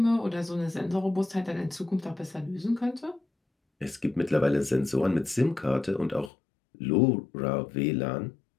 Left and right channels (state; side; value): drops out; right; at 6.3 s